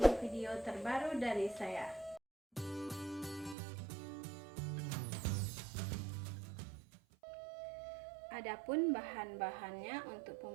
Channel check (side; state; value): left; drops out; at 3.6 s